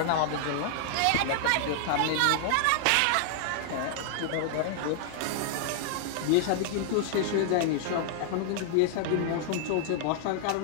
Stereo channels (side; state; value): both; different; correlation -0.01